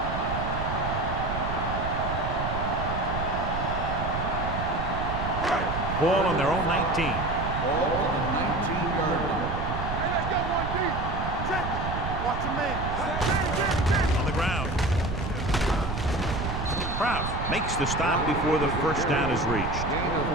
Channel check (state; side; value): noise; right; rumble, 4 dB below the sound